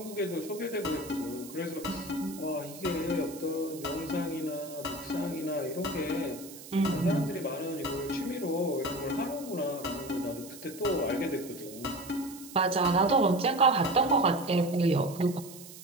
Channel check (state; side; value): noise; right; hiss, 16 dB below the sound